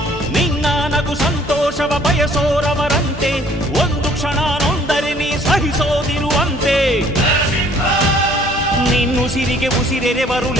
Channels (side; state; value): both; normal; correlation 0.58